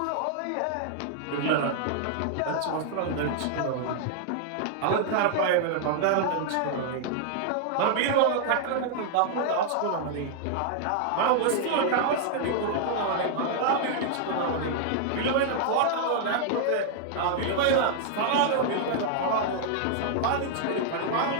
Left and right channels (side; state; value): both; different; correlation -0.01